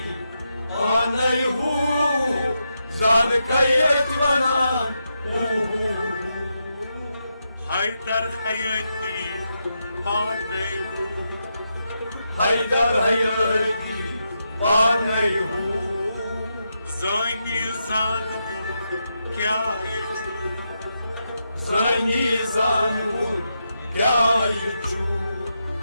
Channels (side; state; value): both; inverted; correlation -0.85